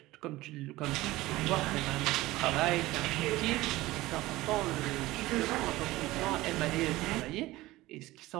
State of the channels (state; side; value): quieter; left; 18.3 dB